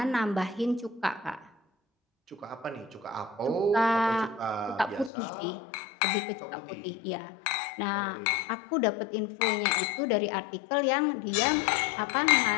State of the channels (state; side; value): drops out; right; at 5.1 s